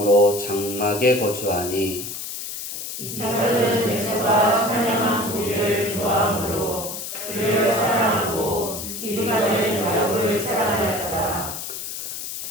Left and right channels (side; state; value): left; noise; hiss, 7 dB below the sound